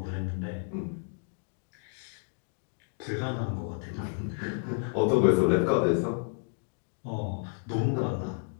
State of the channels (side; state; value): right; silent; 57 dB below the other